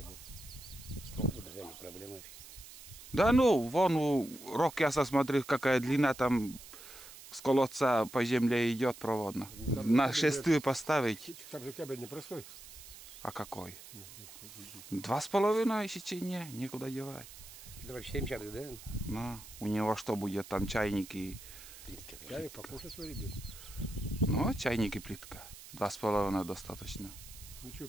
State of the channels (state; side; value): noise; right; hiss, 16 dB below the sound